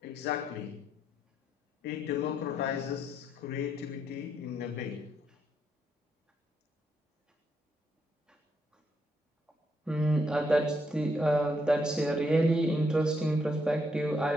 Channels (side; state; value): both; normal; correlation 0.76